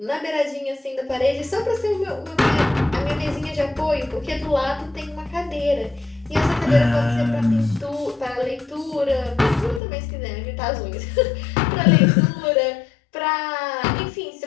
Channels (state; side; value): drops out; right; at 9.8 s